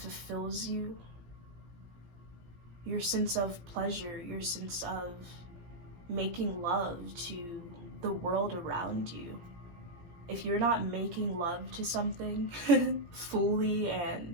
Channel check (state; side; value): late; left; 17 ms